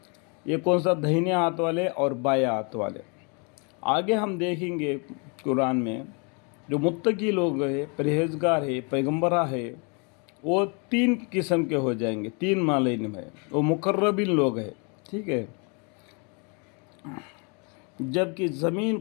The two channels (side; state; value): right; quieter; 34.8 dB